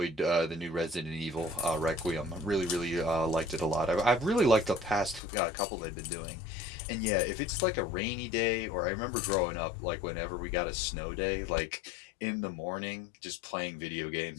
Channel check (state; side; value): drops out; right; at 5.2 s